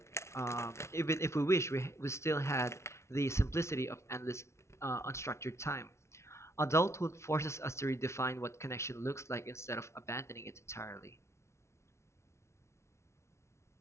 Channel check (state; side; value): late; right; 0.13 ms